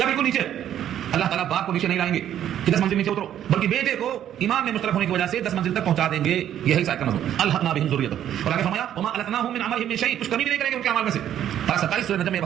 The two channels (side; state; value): left; quieter; 10.7 dB